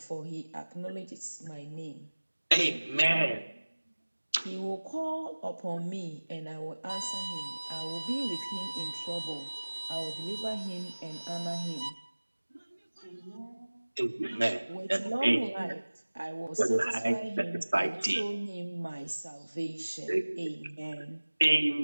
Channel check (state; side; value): inverted; both; correlation -1.00